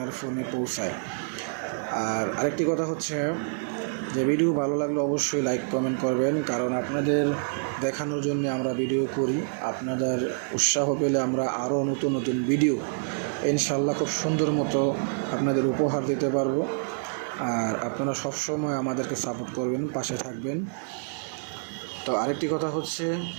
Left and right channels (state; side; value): silent; left; digital silence